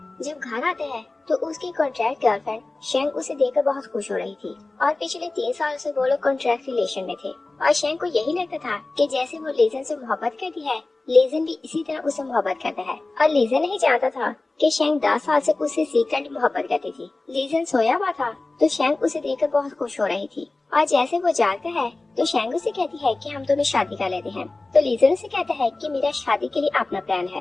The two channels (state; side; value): quieter; right; 3.2 dB